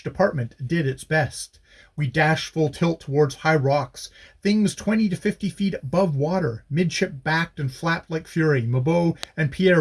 department did its best. We dashed full tilt towards high rocks, things 20 to 50 feet above water. Midship backed and flapped like fury. Mabeau and Pierre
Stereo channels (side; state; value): both; identical; correlation 1.00